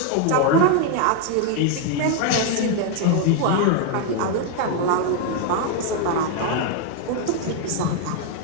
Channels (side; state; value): both; different; correlation 0.00